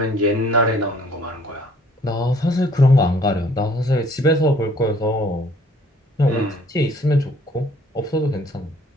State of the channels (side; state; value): both; normal; correlation 0.58